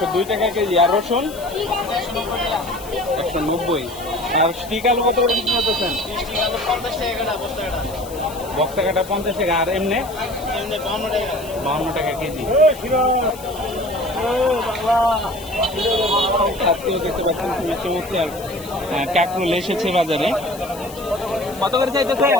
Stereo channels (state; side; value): noise; left; hiss, 17 dB below the sound